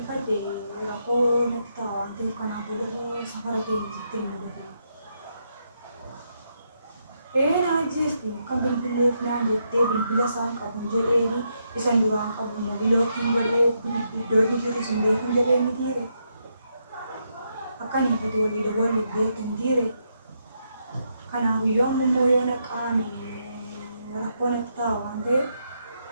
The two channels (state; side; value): inverted; both; correlation -0.79